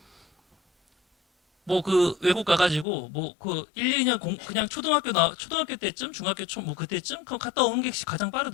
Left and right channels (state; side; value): drops out; right; at 2.9 s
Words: 외국 가가지고 1, 2년 그냥 초등학교 때쯤 중학교 그때쯤 갔다 오는 게 가장